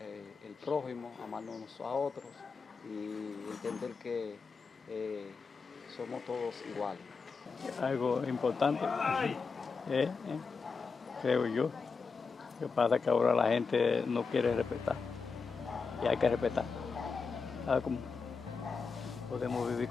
el prójimo, amarnos unos a otros y entender que somos todos iguales. Algo importante, creo yo. Lo que pasa es que ahora la gente no quiere respetar y hay que respetar. ¿Sabes cómo? Podemos vivir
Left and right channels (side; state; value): right; quieter; 5.0 dB